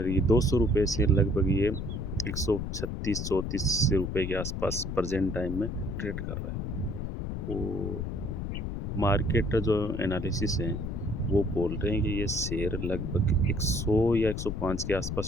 ये 200 रुपये से लगभग ये 136-34 रुपये के आसपास प्रेजेंट टाइम में ट्रेड कर रहा है। और मार्केट जो एनालिसिस है वो बोल रहे हैं कि ये शेयर लगभग 100 या 105 के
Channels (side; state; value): left; noise; rumble, 4 dB below the sound